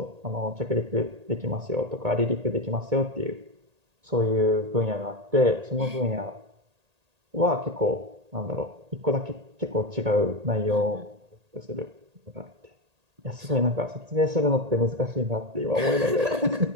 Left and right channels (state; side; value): late; left; 1.8 ms